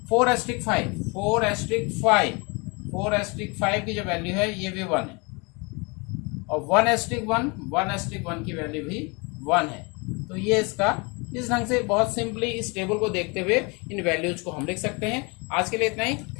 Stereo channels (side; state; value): right; quieter; 29.6 dB